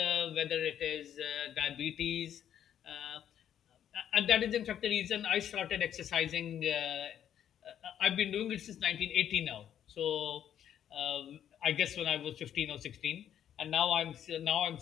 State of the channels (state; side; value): quieter; right; 9.9 dB